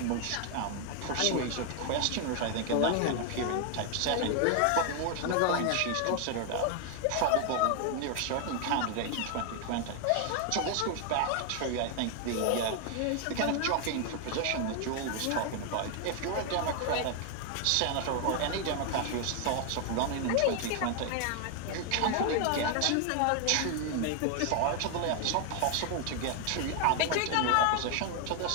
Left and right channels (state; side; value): different; both; correlation 0.00